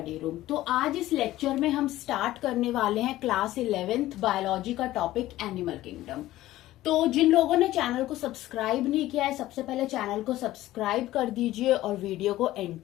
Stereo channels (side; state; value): right; quieter; 15.5 dB